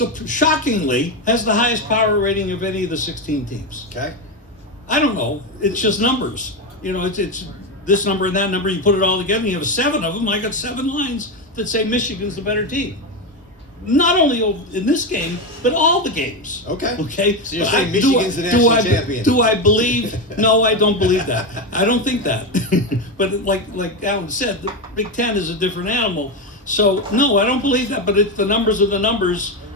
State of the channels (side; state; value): both; normal; correlation 0.13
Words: shockingly, has the highest power rating of any of the 16 teams. Okay. I don't know. It's just numbers. It's this number and that number. You put it all together, and you have 7 of them. I got 7 lines that say Michigan's the better team. Not only in this game, but all the games. Okay. Okay. So you're saying Michigan's the national champion? Do I believe? No, I don't believe that. I don't think that. But like Alan said, the Big Ten is a different animal. So no, I don't believe that. But the numbers are the numbers.